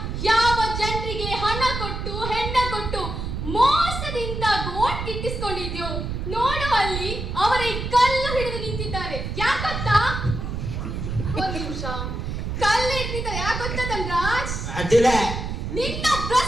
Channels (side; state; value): right; noise; rumble, 4 dB below the sound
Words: ಯಾವ ಜನರಿಗೆ ಹಣ ಕೊಟ್ಟು ಹೆಣ್ಣ ಕೊಟ್ಟು ಮೋಸದಿಂದ ಓಟ್ ಗಿಟ್ಟಿಸ್ಕೊಂಡಿದ್ಯೋ ನೋಡು, ಅಲ್ಲಿ ಅವರೇ ಕಲ್ಲು ಹಿಡಿದು ನಿಂತಿದ್ದಾರೆ. ಯಾಕಂತ ಒಂದು ನಿಮಿಷ, ಕಲ್ಲು ಹಿಡಿದಿದ್ದಾರೆ ಯಾಕಂತ ಧನ್ರಾಜ್? ನಿನ್ನ